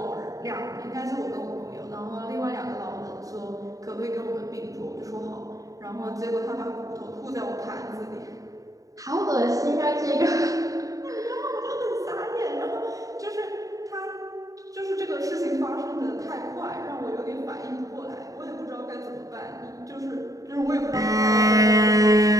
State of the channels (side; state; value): left; late; 0.16 ms